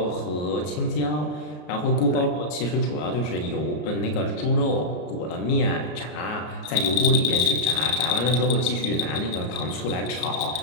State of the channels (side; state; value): right; late; 33 ms